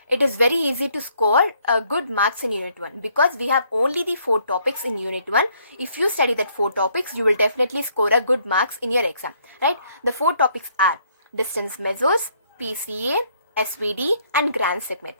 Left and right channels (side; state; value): both; inverted; correlation -0.67